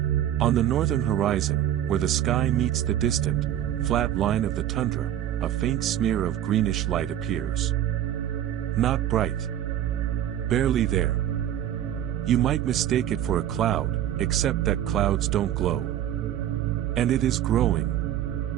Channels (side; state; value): left; quieter; 11.3 dB